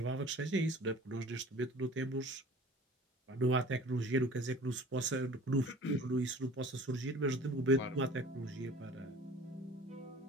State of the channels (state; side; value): normal; both; correlation 0.46